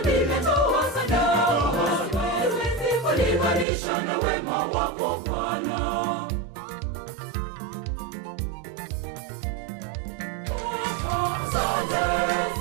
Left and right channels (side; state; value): left; drops out; at 3.7 s